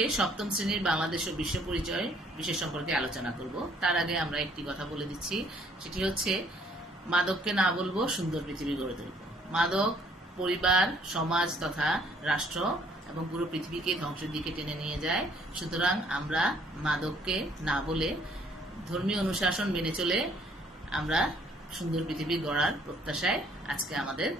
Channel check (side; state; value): both; normal; correlation 0.62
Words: সপ্তম শ্রেণীর বাংলাদেশ ও বিশ্ব পরিচয় বিষয় সম্পর্কে আলোচনা করব। তার আগে আমরা একটি কথা বলে দিচ্ছি, সেটি হচ্ছে মাদককে না বলবো, সুন্দর পৃথিবী গড়ে তুলব। মাদক পরিবার, সমাজ তথা রাষ্ট্র এবং পুরো পৃথিবীকে ধ্বংসের দিকে টেনে নিয়ে যায়। সুতরাং আমরা মাদককে না বলে ধর্মীয় অনুশাসন মেনে চলে আমরা সুন্দর পৃথিবী গড়ার প্রত্যাশায় আজকে আমাদের